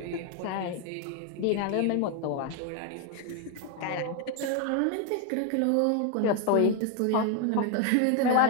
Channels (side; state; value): both; different; correlation 0.01